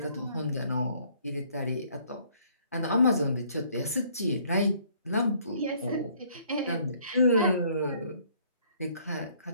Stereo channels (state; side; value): inverted; both; correlation -0.62